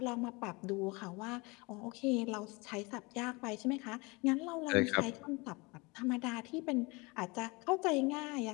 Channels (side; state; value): right; quieter; 26.5 dB